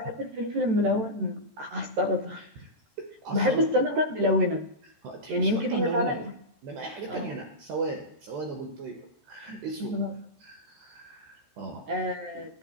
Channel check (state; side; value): late; left; 13 ms